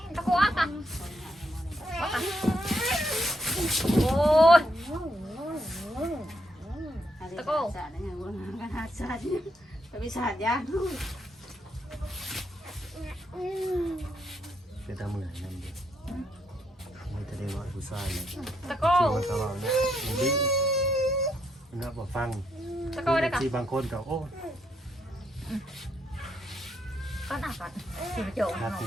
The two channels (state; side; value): normal; both; correlation 0.77